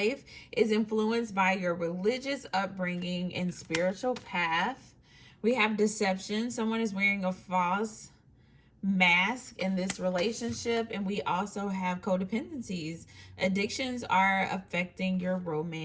is influenced by your religious upbringing and spiritual path. We have deception. Someone is wearing a false mask in this relationship, and we also have codependencies. Addictions are affecting your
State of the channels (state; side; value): identical; both; correlation 1.00